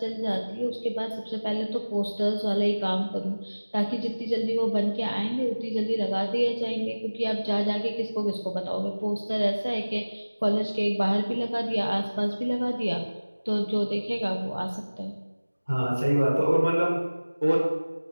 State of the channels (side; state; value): both; inverted; correlation -1.00